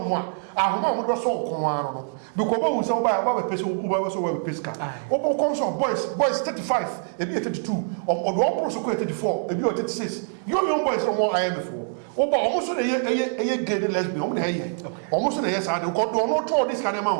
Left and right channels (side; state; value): left; silent; digital silence